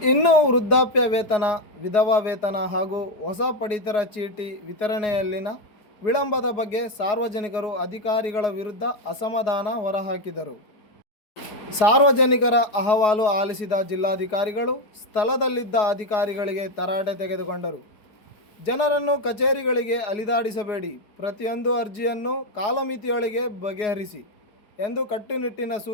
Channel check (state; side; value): late; right; 4.8 ms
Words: ಇನ್ನು ವೃದ್ಧಾಪ್ಯ ವೇತನ, ವಿಧವಾ ವೇತನ ಹಾಗೂ ಹೊಸ ಪಡಿತರ ಚೀಟಿ ವಿತರಣೆಯಲ್ಲಿನ ವಿಳಂಬದ ಬಗ್ಗೆ ಸಾರ್ವಜನಿಕರು ಅಧಿಕಾರಿಗಳ ವಿರುದ್ಧ ಅಸಮಾಧಾನ ಹೊರಹಾಕಿದರು. ಸಾರ್ವಜನಿಕರ ಅಹವಾಲು ಆಲಿಸಿದ ಜಿಲ್ಲಾಧಿಕಾರಿಗಳು ಸ್ಥಳದಲ್ಲಿದ್ದ ಅಧಿಕಾರಿಗಳಿಗೆ ತರಾಟೆ ತೆಗೆದುಕೊಂಡರು. ಜನರನ್ನು ಕಚೇರಿಗಳಿಗೆ ಅಲಿದಾಡಿಸಬೇಡಿ, ಪ್ರತಿಯೊಂದು ಅರ್ಜಿಯನ್ನು ಕಾಲಮಿತಿಯೊಳಗೆ ಬಗೆಹರಿಸಿ ಎಂದು ಕಟ್ಟುನಿಟ್ಟಿನ